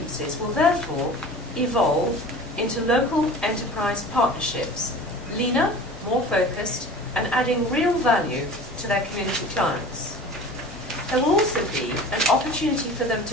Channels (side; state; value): both; normal; correlation 0.39